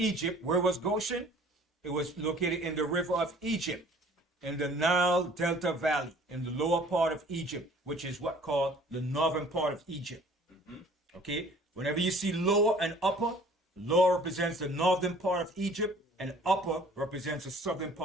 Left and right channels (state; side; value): normal; both; correlation 0.52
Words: where was Goshen? It was located in the river of Egypt, in the Nile Delta Valley, in the lower part of Egypt, which is what called the northern part of Egypt. Okay, whenever you see lower and upper, lower represents the northern part of Egypt, and upper represents the southern